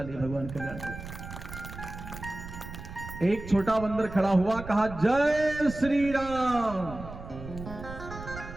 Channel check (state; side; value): noise; right; rumble, 11 dB below the sound